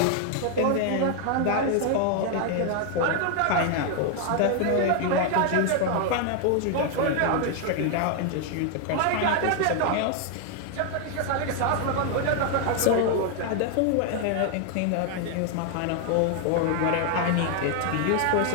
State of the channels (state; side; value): different; both; correlation 0.00